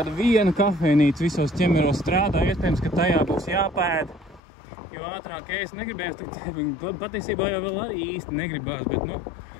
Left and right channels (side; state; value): right; drops out; at 4.4 s